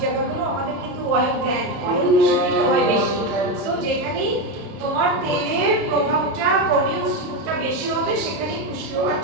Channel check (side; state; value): left; late; 30 ms